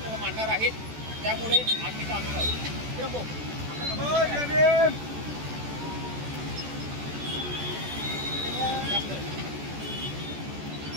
मांडणार आहेत, त्यामुळे आम्ही आलेलो आहोत. किरण भाऊ,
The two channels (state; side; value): late; left; 14 ms